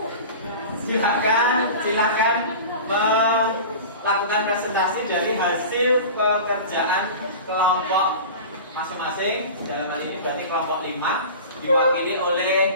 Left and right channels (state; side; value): inverted; both; correlation -0.34